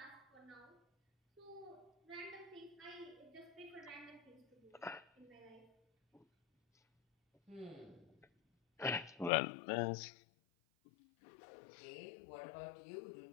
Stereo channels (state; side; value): drops out; right; at 9.3 s